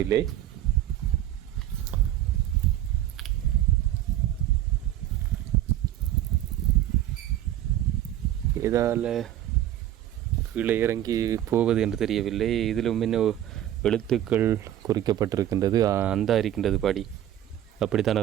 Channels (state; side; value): quieter; left; 12.5 dB